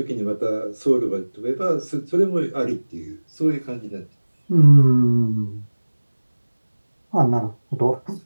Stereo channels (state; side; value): inverted; both; correlation -1.00